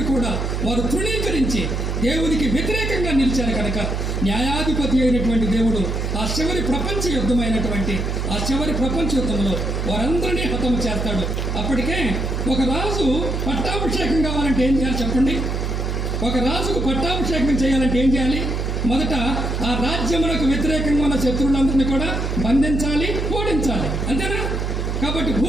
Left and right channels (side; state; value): right; noise; hum, 1 dB below the sound